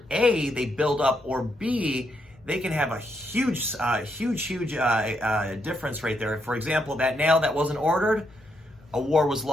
A, they build up, or B, they can have a huge difference right there. For example, that nail that wasn't ordered, a war was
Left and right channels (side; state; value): both; normal; correlation 0.78